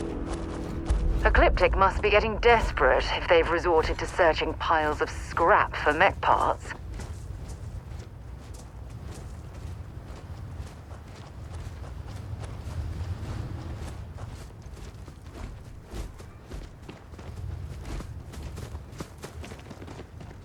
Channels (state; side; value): identical; both; correlation 1.00